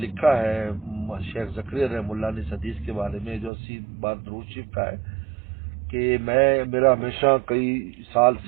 ہے شیخ زکریا رحمہ اللہ نے اس حدیث کے بارے میں جو 80 بار درود شریف کا ہے, کہ میرا ہمیشہ کئی سال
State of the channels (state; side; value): drops out; left; at 3.5 s